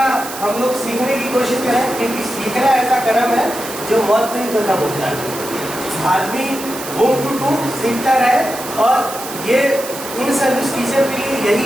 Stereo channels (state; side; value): noise; right; hiss, 10 dB below the sound